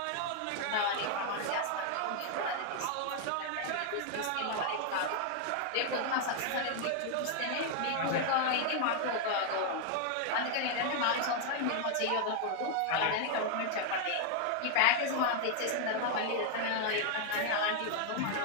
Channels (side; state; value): both; different; correlation 0.00